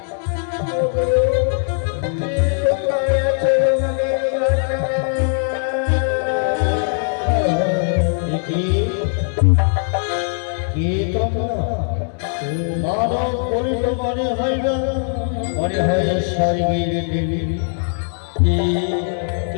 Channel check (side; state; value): right; silent; 65 dB below the other